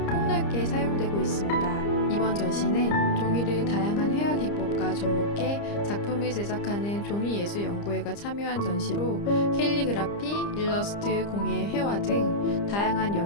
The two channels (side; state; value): right; late; 30 ms